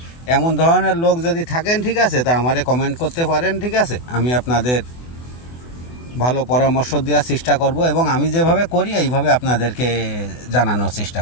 এমন ধরনের লোক যদি থাকেন, ঠিক আছে, তা আমারে কমেন্ট করতে পারেন। ঠিক আছে, আমি আপনাদের ভালো পরামর্শ দেওয়ার চেষ্টা করব এবং আমি যেভাবে করি এইভাবে আপনাদেরকে জানানোর চেষ্টা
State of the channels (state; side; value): late; right; 24 ms